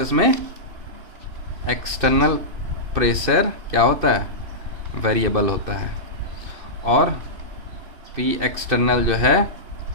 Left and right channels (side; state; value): left; late; 2.6 ms